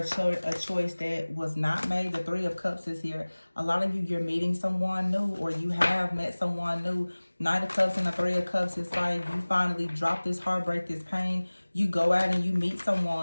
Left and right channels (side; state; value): both; inverted; correlation -1.00